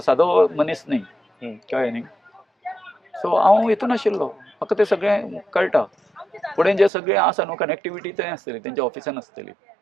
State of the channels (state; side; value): drops out; left; at 6.9 s